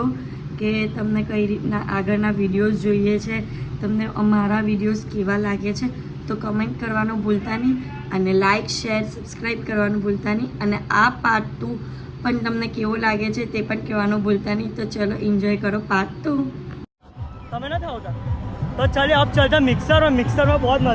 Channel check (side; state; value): both; identical; correlation 1.00